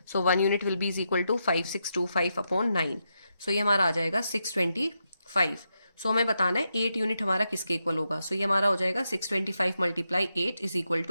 1 unit will be is equal to 5625 upon 9। ये हमारा आ जाएगा 625। हमें बताना है 8 यूनिट हमारा किसके इक्वल होगा। ये हमारा हो जाएगा 625 multiply 8 is equal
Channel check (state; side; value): inverted; both; correlation -0.84